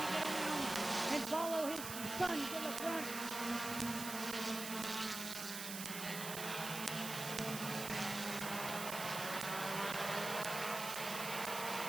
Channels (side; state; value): right; noise; hiss, 6 dB below the sound